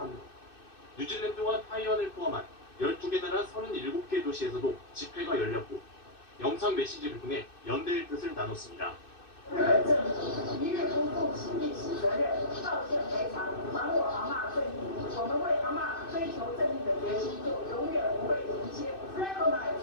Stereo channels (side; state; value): right; late; 2.6 ms